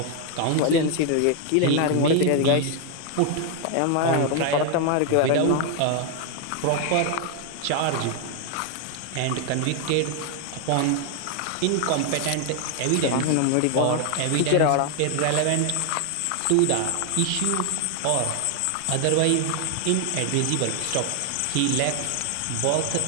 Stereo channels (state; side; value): different; both; correlation 0.00